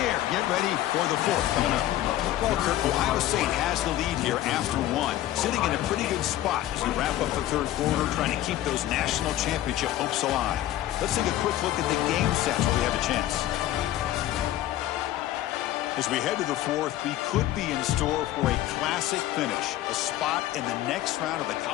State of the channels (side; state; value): right; quieter; 13.8 dB